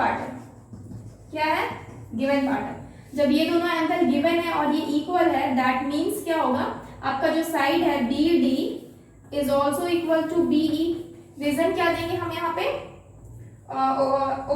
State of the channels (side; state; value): both; identical; correlation 1.00